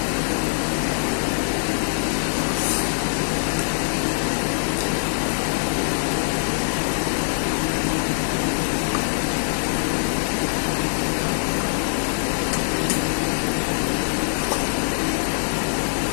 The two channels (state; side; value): silent; right; digital silence